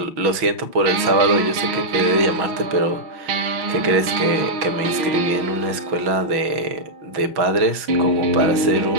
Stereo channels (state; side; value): late; left; 6.1 ms